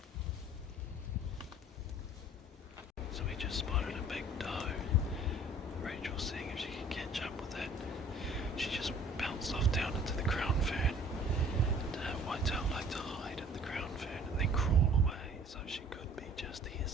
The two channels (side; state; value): both; normal; correlation 0.52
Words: So we just spotted a big doe. Rachel's seeing if she can catch up with it. She just bounced off down into the crown fern. And whitetail like to hide in the crown fern and then crawl away, so she could be just here